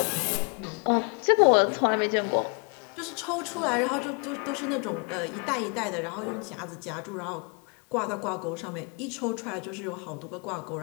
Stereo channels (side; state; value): right; quieter; 35.6 dB